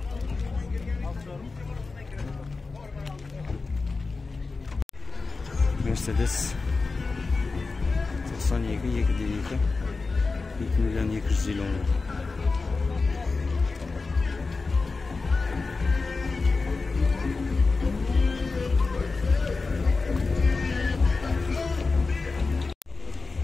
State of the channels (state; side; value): quieter; right; 4.0 dB